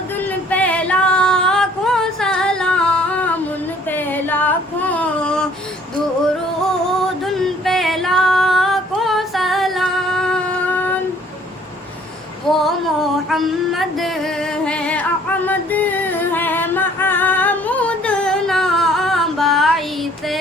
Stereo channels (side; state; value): both; normal; correlation 0.57